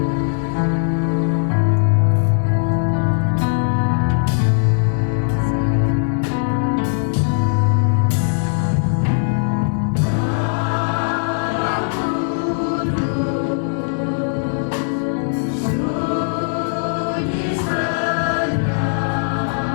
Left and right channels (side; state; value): right; silent; digital silence